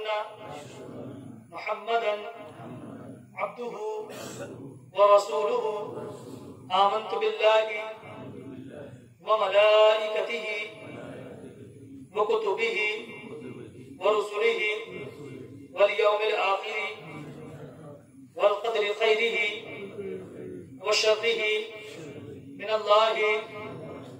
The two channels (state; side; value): identical; both; correlation 1.00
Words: محمدا عبده ورسوله آمنت بالله وملائكته وكتبه ورسله واليوم الآخر والقدر خيره وشره من الله